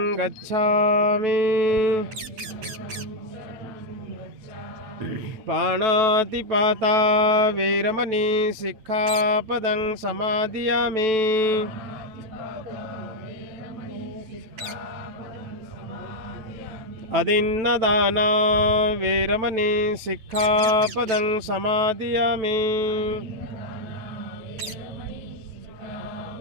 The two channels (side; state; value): left; late; 9.1 ms